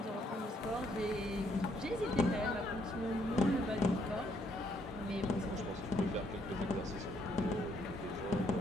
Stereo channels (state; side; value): normal; both; correlation 0.70